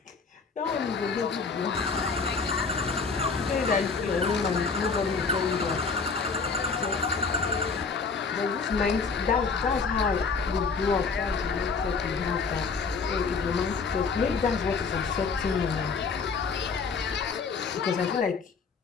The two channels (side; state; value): right; quieter; 4.9 dB